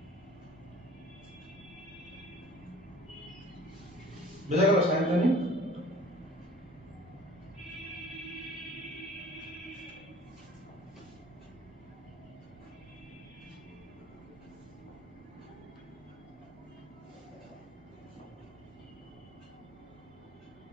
বোঝা গেল সায়ন্তনী?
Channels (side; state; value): both; normal; correlation 0.49